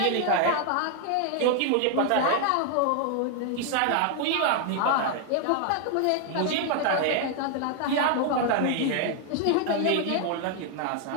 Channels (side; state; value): both; different; correlation 0.00